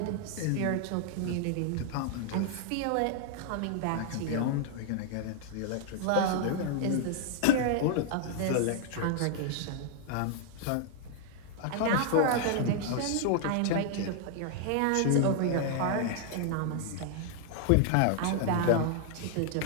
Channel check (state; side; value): different; both; correlation 0.00